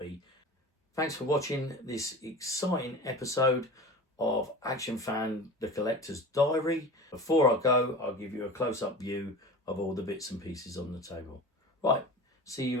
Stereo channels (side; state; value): both; normal; correlation 0.34